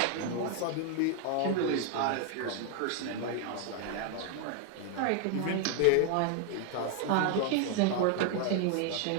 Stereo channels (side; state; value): both; different; correlation 0.01